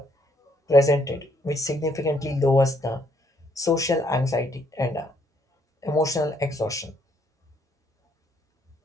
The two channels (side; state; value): both; normal; correlation 0.70